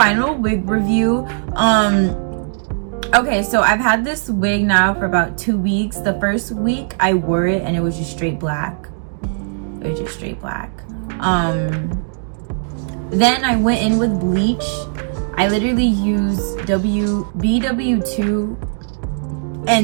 wig review. Okay, so I've had this wig now for about 2 weeks. The first week I wore it and it was just straight black. It was just straight black. Then I went in with bleach. I literally used BW2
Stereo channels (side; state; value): left; silent; digital silence